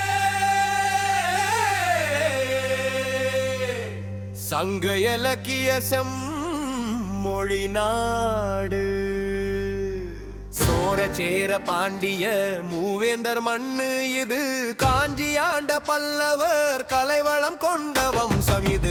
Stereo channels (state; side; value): identical; both; correlation 1.00